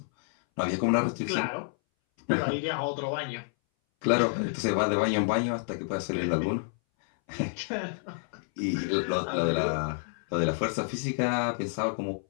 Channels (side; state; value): right; silent; 59 dB below the other